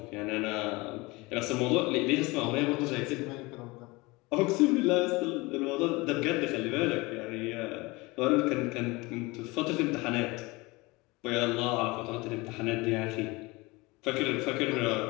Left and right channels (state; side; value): quieter; right; 23.5 dB